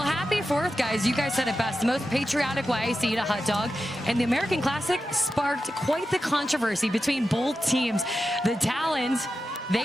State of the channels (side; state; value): both; normal; correlation 0.91